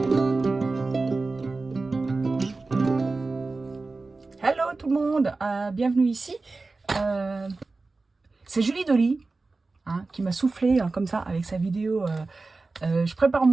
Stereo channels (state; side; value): quieter; left; 3.6 dB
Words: tout le monde, bienvenue ici. C'est Julie Dolly qui m'a soufflé comme ça avec sa vidéo. Je prépare